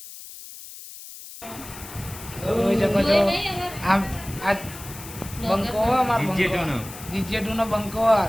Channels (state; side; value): noise; left; hiss, 14 dB below the sound